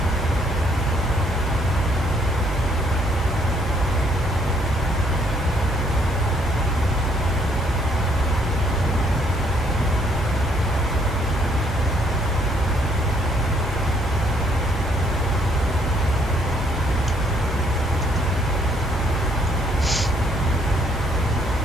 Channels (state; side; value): normal; both; correlation 0.67